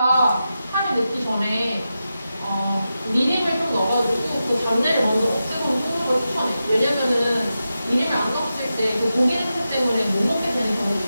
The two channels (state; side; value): inverted; both; correlation -0.91